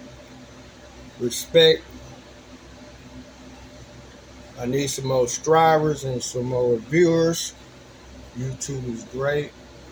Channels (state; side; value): identical; both; correlation 1.00